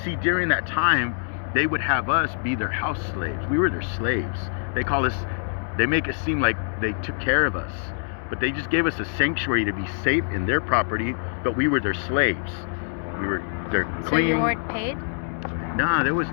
during that time, they would have us be their house slaves. We were their slaves. They make it seem like they took care of us, but they just gave us a sanctuary to be safe in their property, but we were their slaves. We were their queen. So you weren't paid? Nah, there was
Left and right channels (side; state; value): right; silent; digital silence